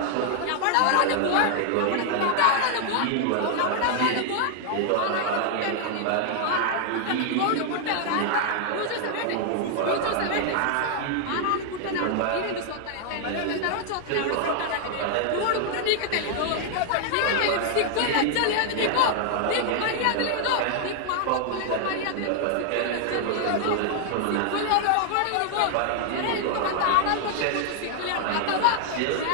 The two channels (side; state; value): both; different; correlation 0.00